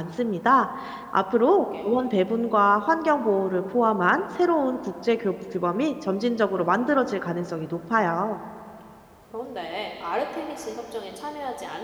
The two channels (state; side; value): identical; both; correlation 1.00